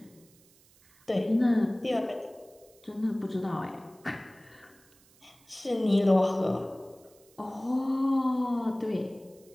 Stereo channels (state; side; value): noise; right; hiss, 29 dB below the sound